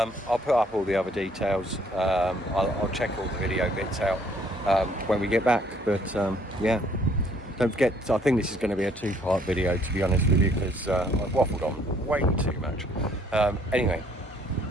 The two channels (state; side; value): normal; both; correlation 0.63